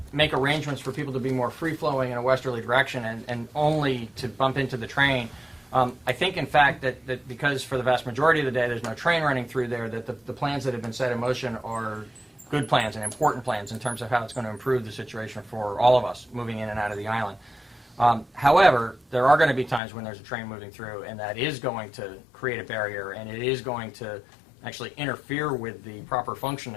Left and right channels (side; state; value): right; drops out; at 19.8 s